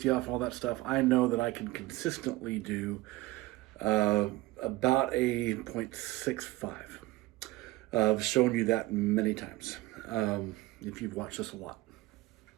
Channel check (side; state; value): left; quieter; 18.9 dB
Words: off, all that stuff, I know that I can consistently do about a 0.65. I've shown you that many times if you've watched this a lot.